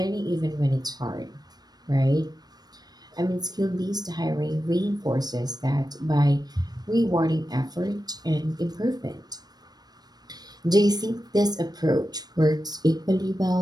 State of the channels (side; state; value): left; late; 0.19 ms